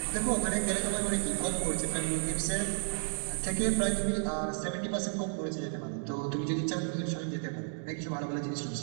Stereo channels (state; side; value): silent; left; digital silence